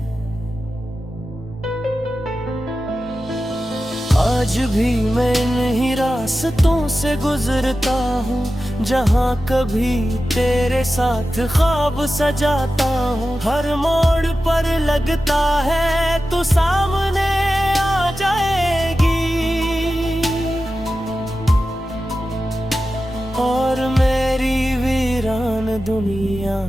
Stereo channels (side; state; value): both; normal; correlation 0.93